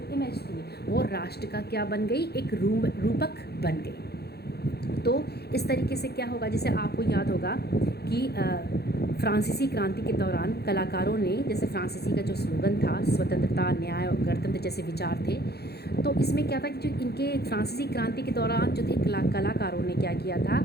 इमेज थी, वो राष्ट्र का क्या बन गई, एक रूपक बन गई। तो इस तरीके से क्या होगा, जैसे आपको याद होगा कि फ्रांसीसी क्रांति के दौरान कलाकारों ने, जैसे फ्रांसीसी का जो स्लोगन था स्वतंत्रता, न्याय और गणतंत्र जैसे विचार थे, तो इसमें क्या था कि जो इनके फ्रांसीसी क्रांति के दौरान जो थे कलाकारों ने क्या किया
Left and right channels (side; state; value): right; late; 0.47 ms